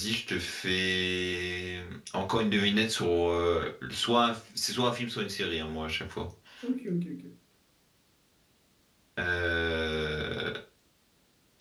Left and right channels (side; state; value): both; identical; correlation 1.00